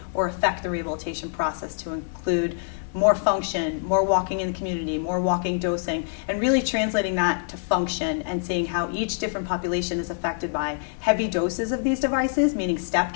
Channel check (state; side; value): silent; right; 62 dB below the other